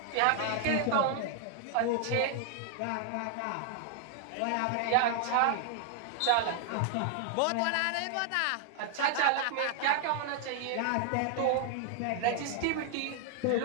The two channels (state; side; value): different; both; correlation 0.00